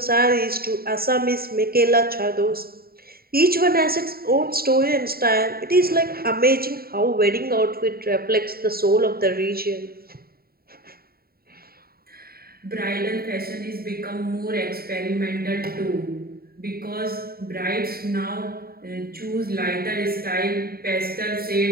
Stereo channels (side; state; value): left; late; 0.44 ms